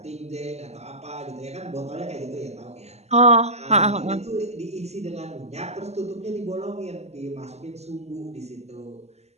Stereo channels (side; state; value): left; late; 0.31 ms